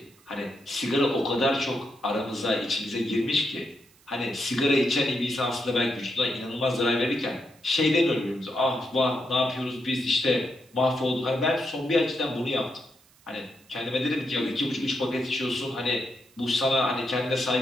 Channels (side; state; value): right; noise; hiss, 30 dB below the sound